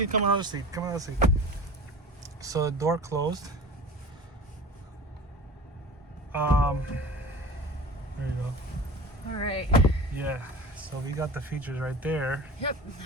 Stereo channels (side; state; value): both; normal; correlation 0.37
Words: come another seat. Come another seat. So the door closed. There you go. All right. Yeah. So we got the features right there. Yep.